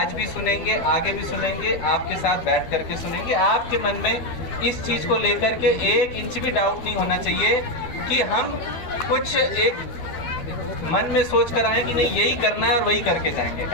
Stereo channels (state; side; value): late; right; 12 ms